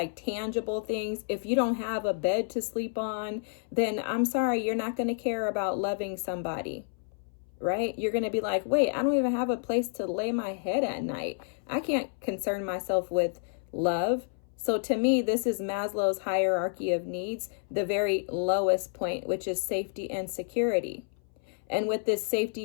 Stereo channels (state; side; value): silent; right; 58 dB below the other